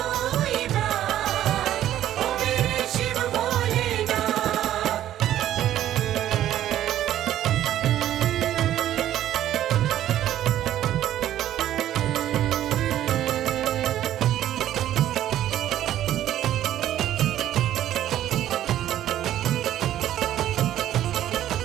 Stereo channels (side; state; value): left; quieter; 12.3 dB